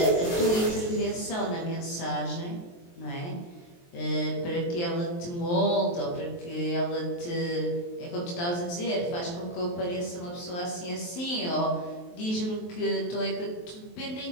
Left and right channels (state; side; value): late; right; 23 ms